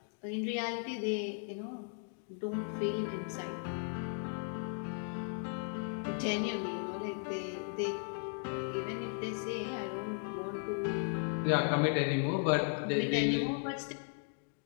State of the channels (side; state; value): right; silent; 54 dB below the other